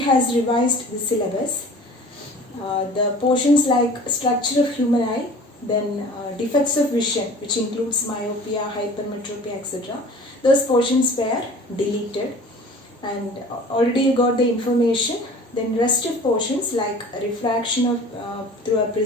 has revised the syllabus. The portions like structure of human eye, then defects of vision, which includes myopia, hypermetropia, etc. Those portions were deleted, and already you got the information. Then rest of portions like refraction of through a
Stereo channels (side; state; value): both; normal; correlation 0.44